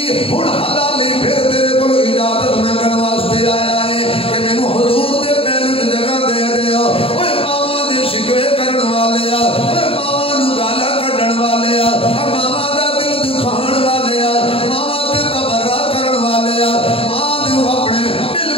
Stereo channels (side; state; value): right; late; 0.27 ms